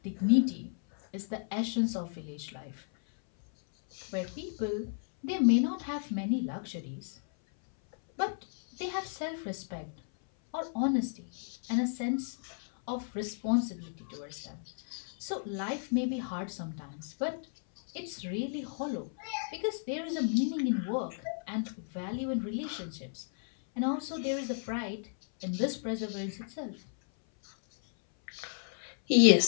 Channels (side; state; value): right; silent; 56 dB below the other